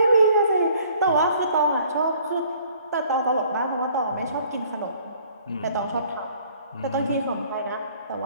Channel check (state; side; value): inverted; both; correlation -0.57